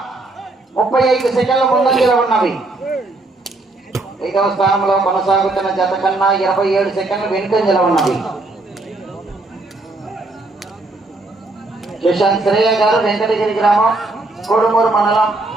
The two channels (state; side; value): quieter; left; 3.0 dB